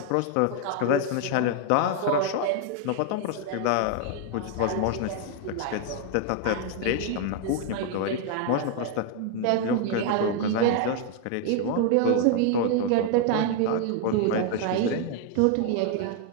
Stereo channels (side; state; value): both; different; correlation 0.00